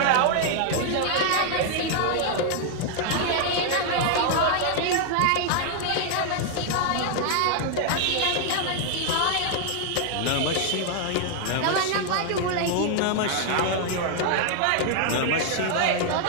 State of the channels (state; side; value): different; both; correlation 0.00